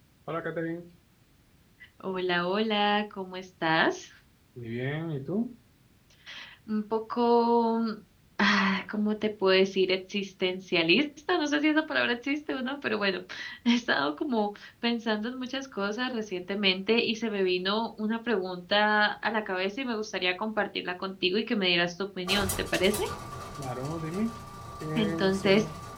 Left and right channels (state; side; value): identical; both; correlation 1.00